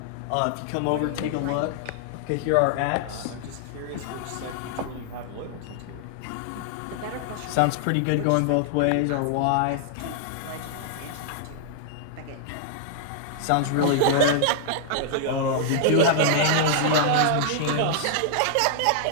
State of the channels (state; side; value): different; both; correlation -0.01